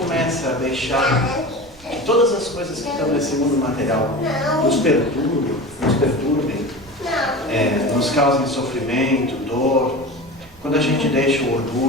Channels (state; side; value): noise; right; rumble, 24 dB below the sound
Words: a deixar que todas as coisas que estão nesse mundo material nos perturbem, nos causem sofrimento, dor, quando a gente deixa o